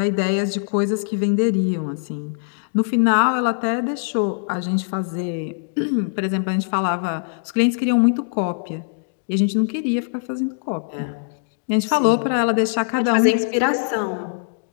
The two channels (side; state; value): right; silent; digital silence